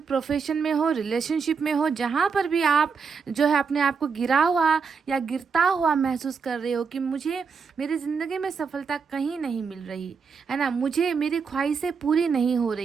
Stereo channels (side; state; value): left; quieter; 5.6 dB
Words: प्रोफेशन में हो, रिलेशनशिप में हो, जहाँ पर भी आप जो है अपने आप को गिरा हुआ या गिरता हुआ महसूस कर रहे हो कि मुझे मेरी ज़िंदगी में सफलता कहीं नहीं मिल रही है ना, मुझे मेरी ख्वाहिशें पूरी नहीं हो